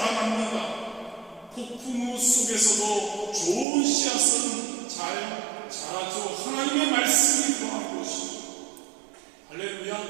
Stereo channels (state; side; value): drops out; left; at 3.7 s